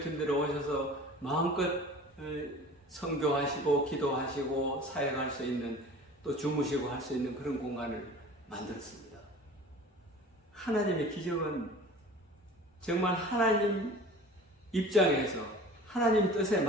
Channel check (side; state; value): both; normal; correlation 0.42